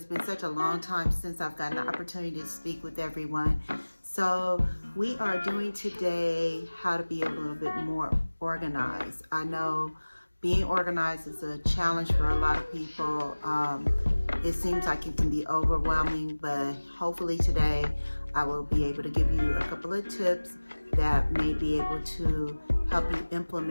been such a long time since I've gotten the opportunity to speak with everyone. So we are doing today how to be a little bit more organized. I know being organized is a challenge for a lot of people. It seems like it can be overwhelming, but hopefully today I will be able to give you a couple of tips that may be able to help you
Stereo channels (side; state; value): both; inverted; correlation -1.00